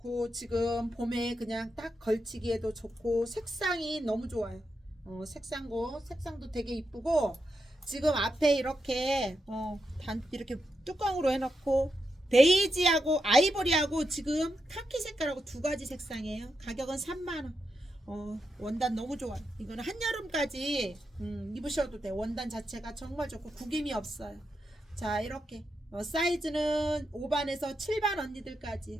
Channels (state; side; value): normal; both; correlation 0.85